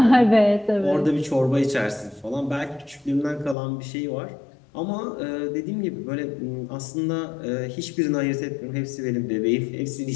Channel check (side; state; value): right; drops out; at 3.6 s